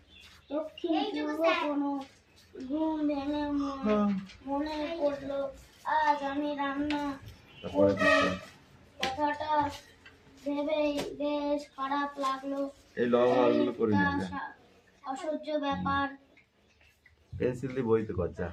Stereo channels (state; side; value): identical; both; correlation 1.00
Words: দক্ষিণ পূর্ব কোনো ঘুম ভেঙে মনে পড়লো আজ আমি রান্না করবো। কথাটা ভেবেই বেশ খারাপ লাগলো। এই লবণগুলো করে নে। একটা অসহ্য ব্যাপার। পেন্সিল দিয়ে বইতে কর যা।